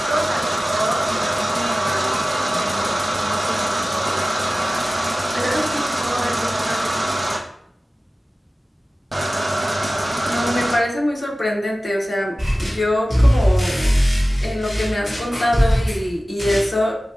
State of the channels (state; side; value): normal; both; correlation 0.97